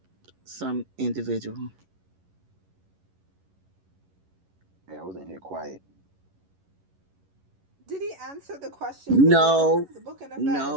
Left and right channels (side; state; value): left; late; 11 ms